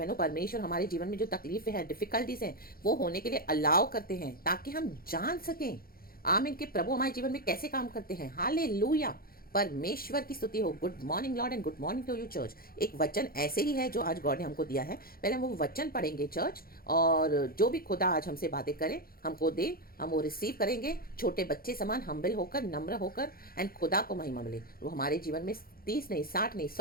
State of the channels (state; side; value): late; right; 0.43 ms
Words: परमेश्वर हमारे जीवन में जो तकलीफें हैं, डिफिकल्टीज हैं, वो होने के लिए अलाउ करते हैं ताकि हम जान सकें, आमीन, कि प्रभु हमारे जीवन में कैसे काम करते हैं। हालेलुया। परमेश्वर की स्तुति हो। Good morning lord and good morning to you church. एक वचन ऐसे ही है जो आज गॉड ने हमको दिया है। पहले हम वो वचन पढ़ेंगे चर्च, और जो भी खुदा आज हमसे बातें करे, हमको दे, हम वो रिसीव करेंगे छोटे बच्चे समान, हम्बल होकर, नम्र होकर, एंड खुदा को महिमा मिले। वो हमारे जीवन में 30 नहीं, 60 नहीं,